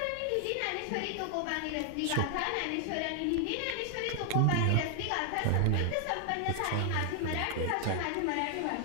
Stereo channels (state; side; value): different; both; correlation 0.00